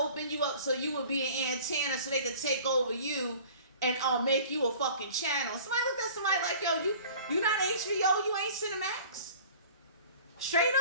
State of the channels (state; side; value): inverted; both; correlation -0.45